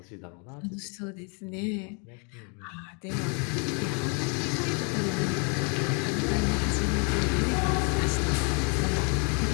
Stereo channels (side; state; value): right; quieter; 36.4 dB